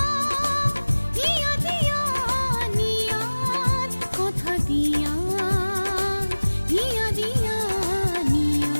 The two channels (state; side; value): inverted; both; correlation -1.00